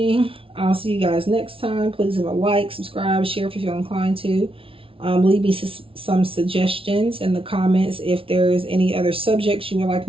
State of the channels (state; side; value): late; left; 0.26 ms